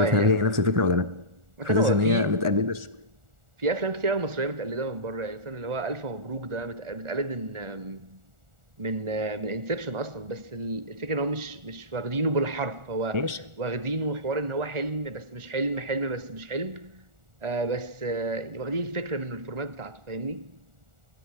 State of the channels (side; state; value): left; late; 1.4 ms